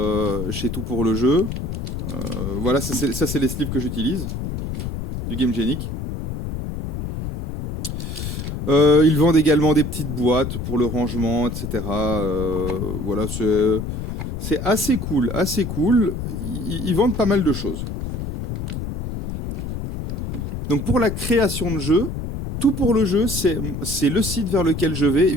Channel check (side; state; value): left; noise; rumble, 5 dB below the sound